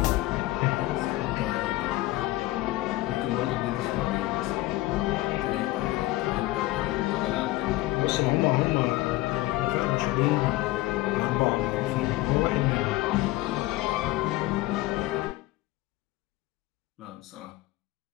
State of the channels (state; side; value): quieter; right; 18.2 dB